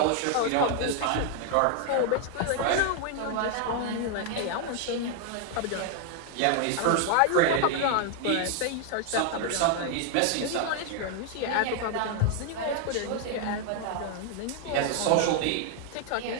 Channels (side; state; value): both; different; correlation 0.00